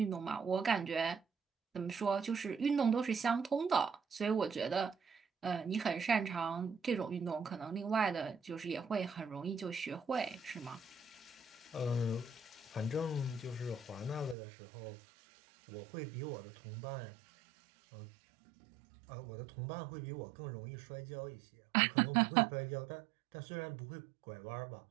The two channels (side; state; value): left; drops out; at 14.4 s